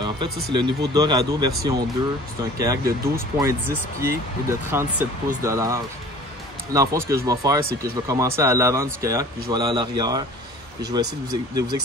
fait, ça, c'est le niveau Dorado version 2. C'est un kayak de 12,10 pieds et de 37 pouces de large. Dans le fond, ce que je vais faire, c'est que je vais commencer à l'avant du kayak, puis je vais aller à l'arrière. Et je vais essayer de vous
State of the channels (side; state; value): both; normal; correlation 0.45